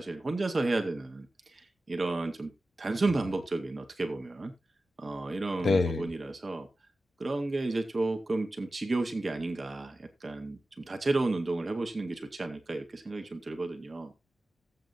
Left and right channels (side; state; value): both; normal; correlation 0.94